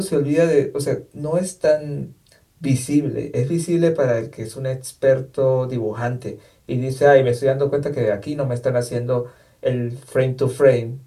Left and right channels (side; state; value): both; identical; correlation 1.00